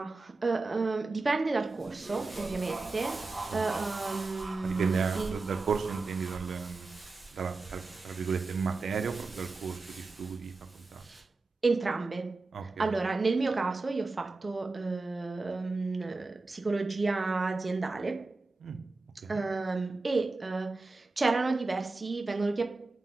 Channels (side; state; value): left; quieter; 3.6 dB